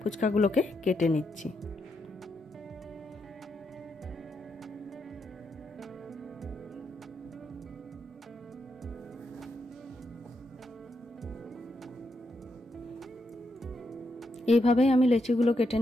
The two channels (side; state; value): both; normal; correlation 0.82